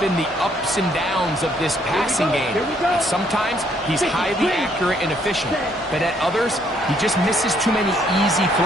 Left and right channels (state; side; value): normal; both; correlation 0.68